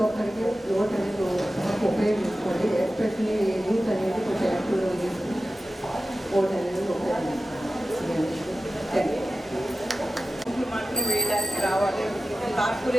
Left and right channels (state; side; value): normal; both; correlation 0.94